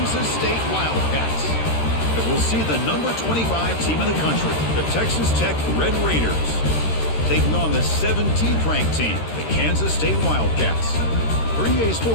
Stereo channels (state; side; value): late; right; 13 ms